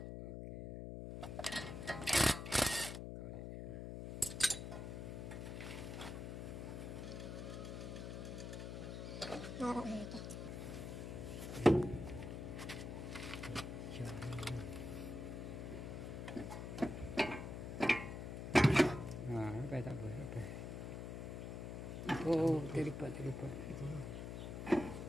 Tak apa. Oh, terlipat.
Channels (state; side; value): noise; left; hum, 6 dB below the sound